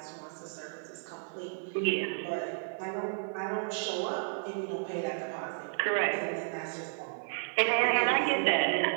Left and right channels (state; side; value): silent; left; digital silence